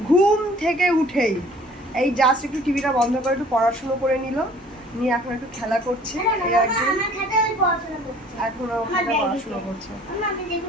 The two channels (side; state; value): both; normal; correlation 0.52